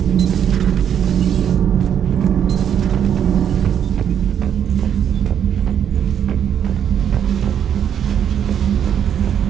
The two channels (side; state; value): left; quieter; 9.0 dB